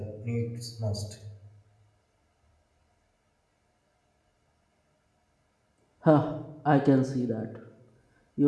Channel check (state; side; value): identical; both; correlation 1.00